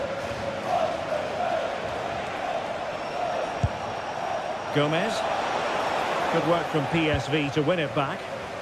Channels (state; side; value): identical; both; correlation 1.00